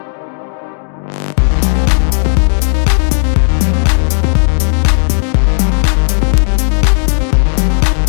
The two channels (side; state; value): right; silent; 64 dB below the other